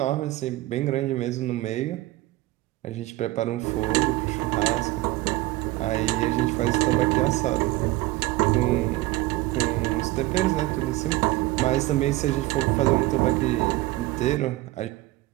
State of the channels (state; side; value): quieter; left; 18.5 dB